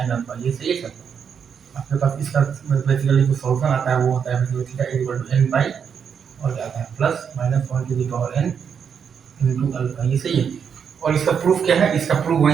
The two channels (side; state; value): left; quieter; 7.2 dB